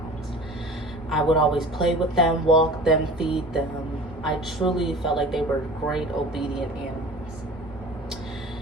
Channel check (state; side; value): normal; both; correlation 0.41